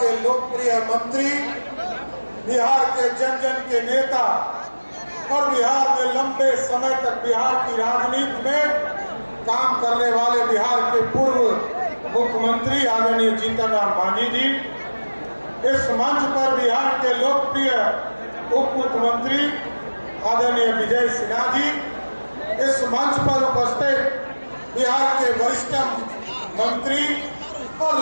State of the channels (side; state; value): both; inverted; correlation -1.00